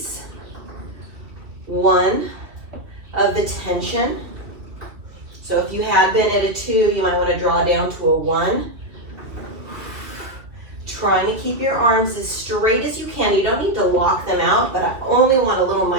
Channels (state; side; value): late; left; 2.5 ms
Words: one of the tension. So if you had been at a 2, you might want to draw down to a 1. Trying to keep your arms as straight as you can. You don't need to lock them out, but I only want a little